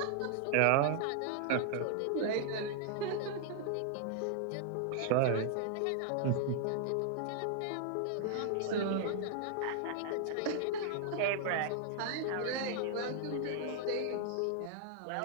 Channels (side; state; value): both; different; correlation 0.00